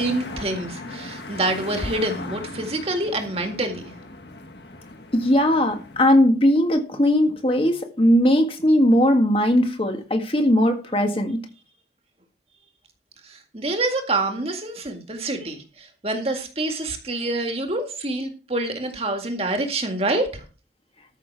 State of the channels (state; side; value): normal; both; correlation 0.63